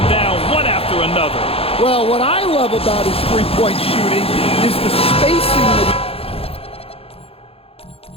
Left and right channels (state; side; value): late; right; 0.28 ms